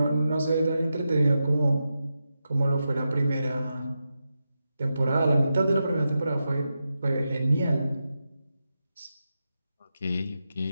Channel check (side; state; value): both; inverted; correlation -0.89